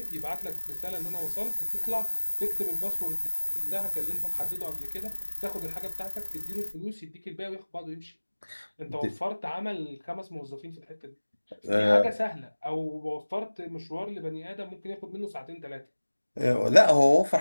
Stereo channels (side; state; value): both; inverted; correlation -1.00